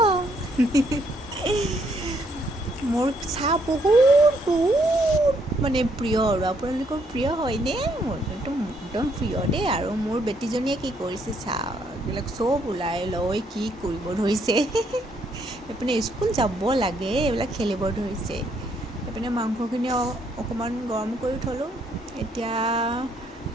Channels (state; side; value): normal; both; correlation 0.71